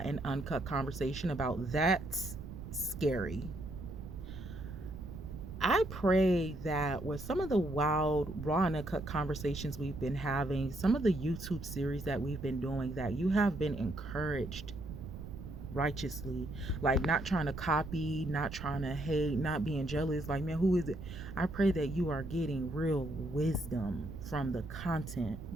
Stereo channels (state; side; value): noise; right; rumble, 10 dB below the sound